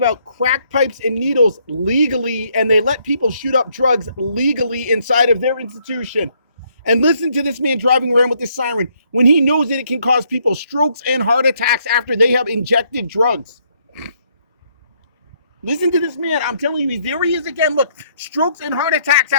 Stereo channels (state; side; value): inverted; both; correlation -0.70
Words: out crack pipes and needles legally, and they let people shoot up drugs legally inside of their institution. And listen to this man driving around with this siren when he knows that it can cause people strokes and heart attacks after they have injected drugs. Listen to this man. I'm telling you, there he is again. Look, strokes and heart attacks